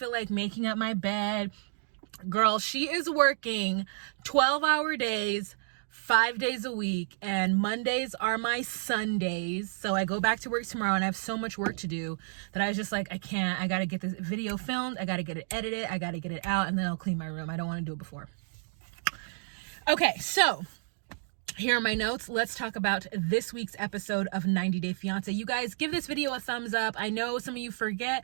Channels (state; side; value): silent; left; digital silence